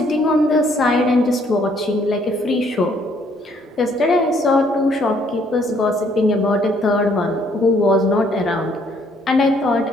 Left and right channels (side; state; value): both; normal; correlation 0.65